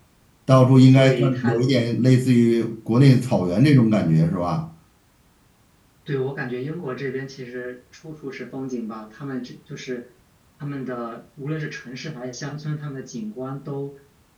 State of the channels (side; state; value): both; identical; correlation 1.00